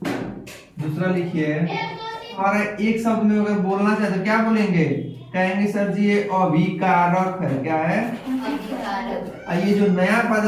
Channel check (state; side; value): identical; both; correlation 1.00